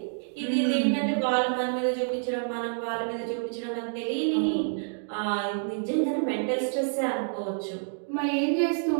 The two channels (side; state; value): left; silent; digital silence